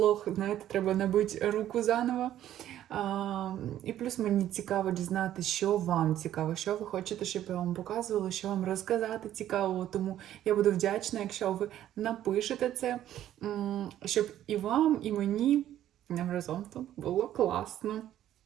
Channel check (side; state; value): left; quieter; 12.0 dB